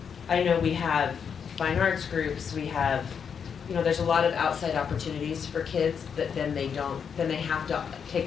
know we have fine arts groups, we have, there's a lot of outside opportunities for kids that then they have to take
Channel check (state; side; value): quieter; right; 6.9 dB